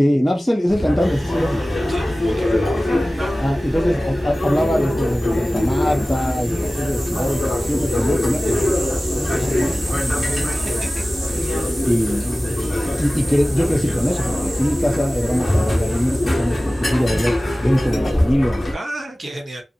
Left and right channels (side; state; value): both; normal; correlation 0.97